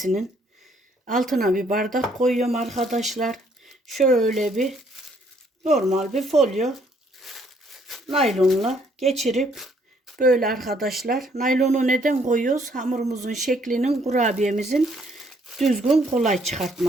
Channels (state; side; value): normal; both; correlation 0.66